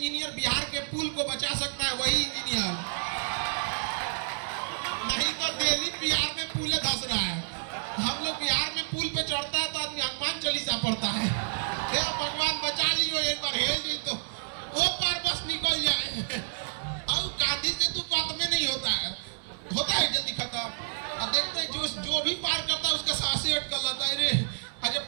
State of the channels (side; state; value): left; silent; 58 dB below the other